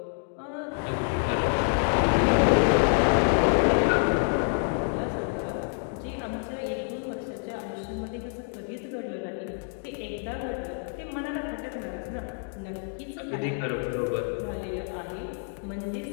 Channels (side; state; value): right; silent; 60 dB below the other